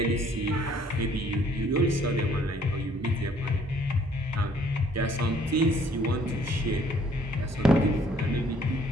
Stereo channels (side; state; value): both; normal; correlation 0.61